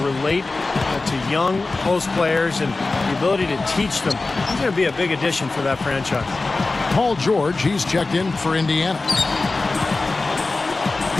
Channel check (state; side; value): quieter; right; 3.5 dB